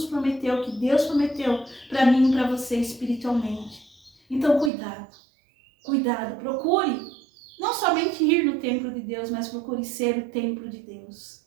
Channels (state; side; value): drops out; left; at 4.7 s